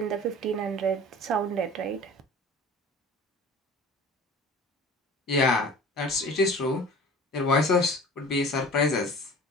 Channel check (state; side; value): normal; both; correlation 0.41